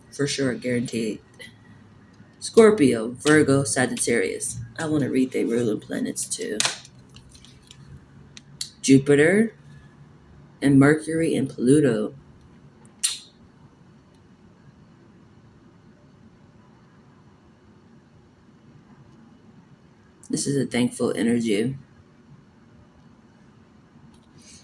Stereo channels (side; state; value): both; identical; correlation 1.00